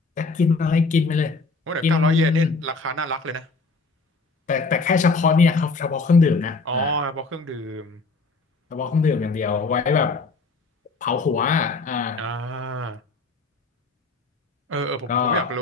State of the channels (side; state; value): right; quieter; 3.9 dB